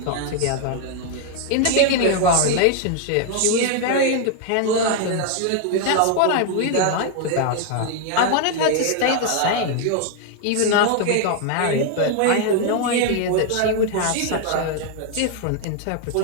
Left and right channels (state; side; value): different; both; correlation 0.00